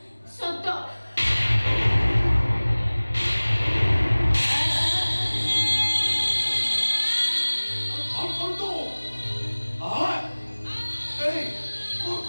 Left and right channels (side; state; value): both; inverted; correlation -1.00